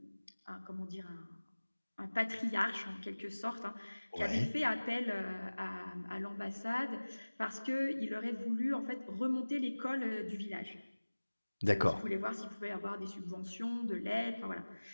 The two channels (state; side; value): inverted; both; correlation -1.00